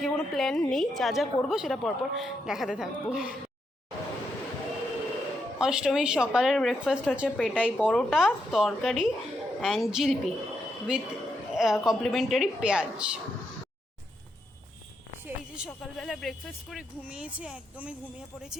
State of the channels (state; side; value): normal; both; correlation 0.81